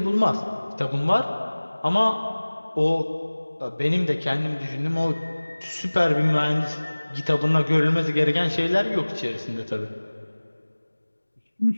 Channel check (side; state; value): both; inverted; correlation -1.00